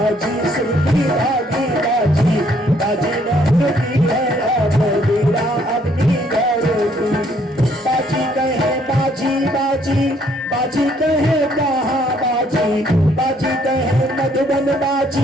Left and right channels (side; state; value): both; normal; correlation 0.66